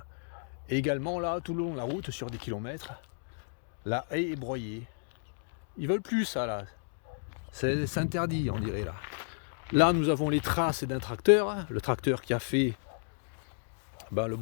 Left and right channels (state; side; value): silent; right; digital silence